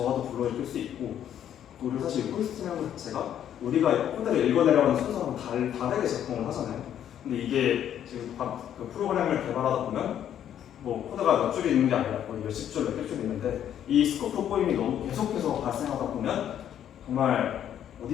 불러일으킬 수 있고, 그리고 사실 호스팅이라는 것 자체가 우리가 코드를 읽어내려는 순서랑 다르게 작동을 하잖아요. 근데 이게 지금 그 프로그램을 개발하다 보면 뭐 코드가 몇 줄이 있는 게 아니라 거의 몇십 줄, 몇백 줄 있는데 이 스코프 꼬임이 너무 계속해서 발생하다 보면 정말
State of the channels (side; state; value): right; quieter; 10.2 dB